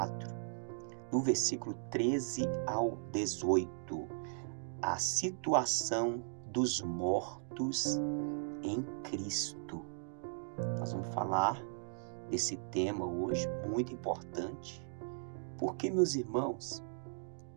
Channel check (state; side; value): silent; left; digital silence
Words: do versículo 13 ao 18. A situação dos mortos em Cristo. Nós vamos falar desse tema hoje, muito importante, porque, meus irmãos,